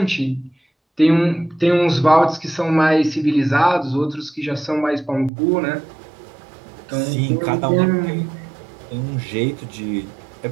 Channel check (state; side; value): drops out; left; at 5.3 s